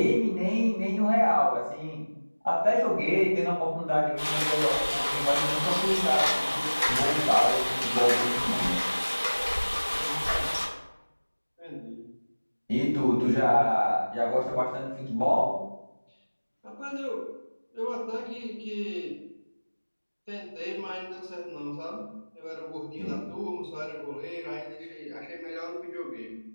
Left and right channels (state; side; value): inverted; both; correlation -1.00